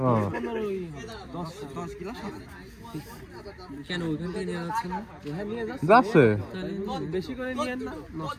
ও 10 গ্লাস হবে। কেন ওইখান থেকে নিয়ে যাচ্ছে না? হ্যাঁ নিয়ে যাচ্ছে। যাচ্ছে তাহলে বেশি করে নিয়েন না,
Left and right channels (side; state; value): both; identical; correlation 1.00